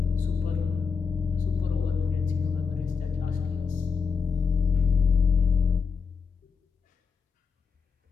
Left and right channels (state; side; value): quieter; right; 5.7 dB